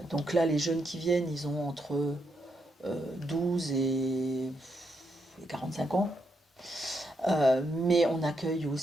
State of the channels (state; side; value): normal; both; correlation 0.80